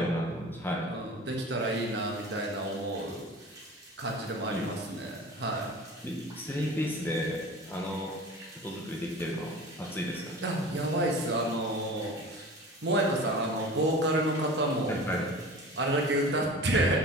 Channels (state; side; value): normal; both; correlation 0.38